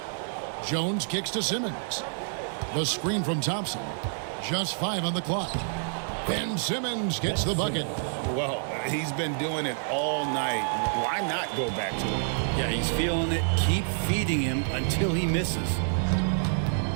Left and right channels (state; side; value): silent; left; digital silence